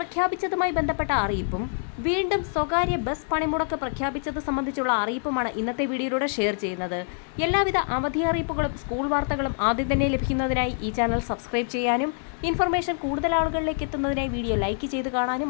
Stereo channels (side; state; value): right; silent; digital silence